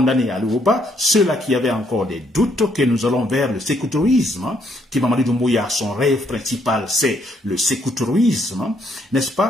Ali Ouba, ceux-là qui avaient encore des doutes que nous allons vers le sécoutourisme, qui Mamadi Doumbouya, son rêve principal, c'est le sécoutourisme, n'est-ce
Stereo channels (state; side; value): normal; both; correlation 0.71